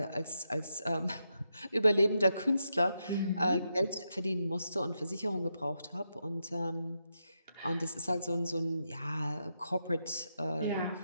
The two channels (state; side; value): inverted; both; correlation -0.84